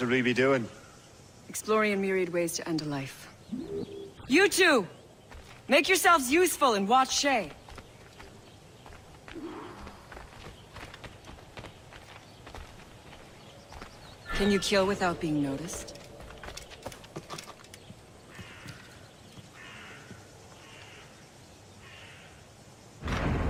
we be doing? Exploring a myriad ways to end a life. You two! Make yourselves useful and watch Shay. Can you kill without being noticed?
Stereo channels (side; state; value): both; identical; correlation 1.00